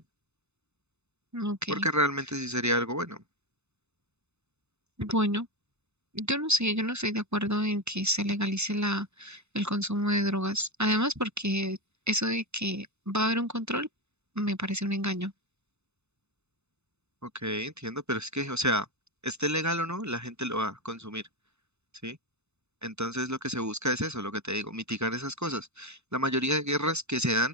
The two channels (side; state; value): left; late; 0.81 ms